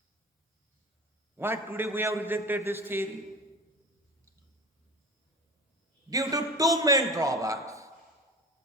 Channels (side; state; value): both; normal; correlation 0.34